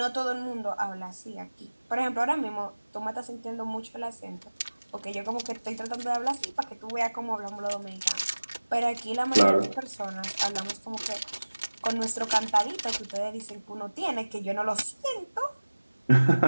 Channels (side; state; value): both; inverted; correlation -1.00